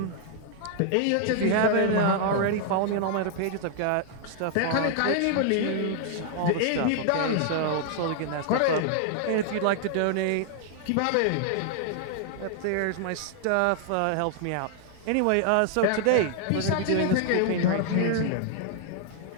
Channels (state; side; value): different; both; correlation 0.00